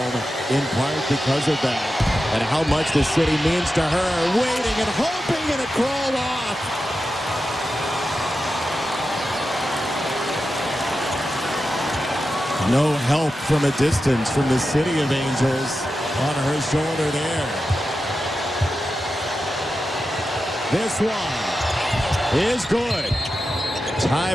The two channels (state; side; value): normal; both; correlation 0.91